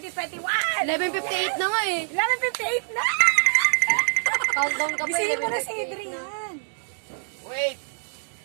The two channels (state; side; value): silent; left; 61 dB below the other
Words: 11:58 na nga eh. 11:58 na! Countdown ka pa. Bisihin mo na si 11:58 Adrian. Wait.